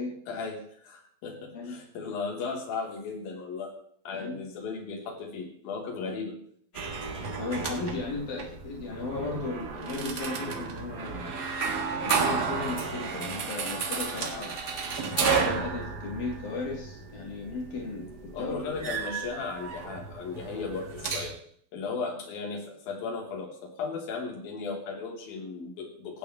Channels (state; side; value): late; right; 12 ms